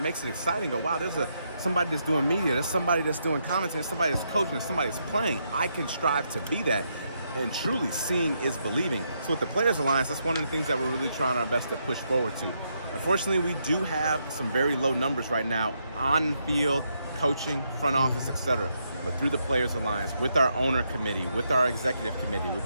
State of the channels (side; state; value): both; inverted; correlation -0.79